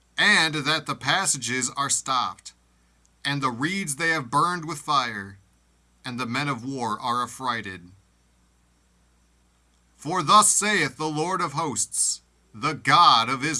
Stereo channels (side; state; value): both; identical; correlation 1.00